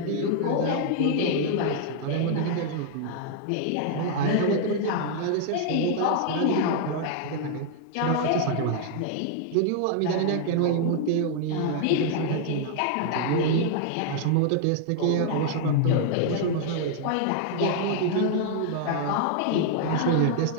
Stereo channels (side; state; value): both; different; correlation -0.01